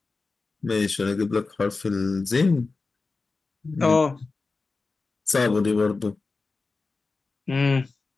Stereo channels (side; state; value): right; quieter; 3.9 dB